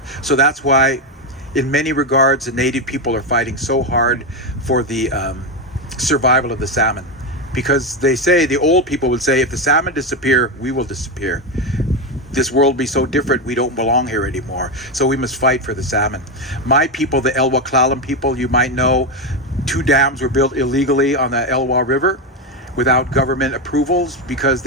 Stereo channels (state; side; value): normal; both; correlation 0.10